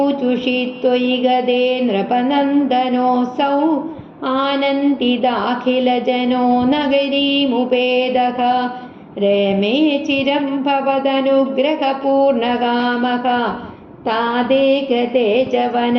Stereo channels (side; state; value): both; identical; correlation 1.00